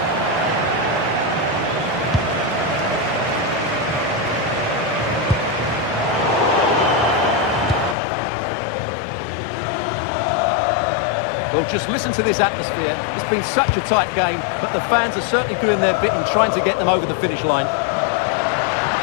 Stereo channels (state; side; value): drops out; right; at 8.0 s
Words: Well, just listen to this atmosphere. It's been such a tight game, but the fans are certainly doing their bit in trying to get them over the finish line.